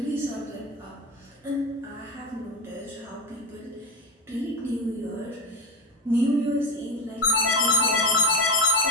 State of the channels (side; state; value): both; normal; correlation 0.16